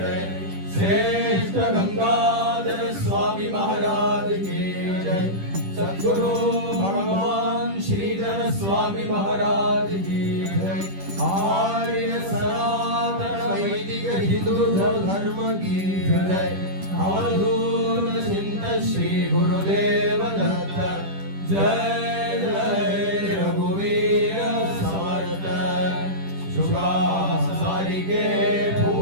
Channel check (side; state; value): left; late; 10 ms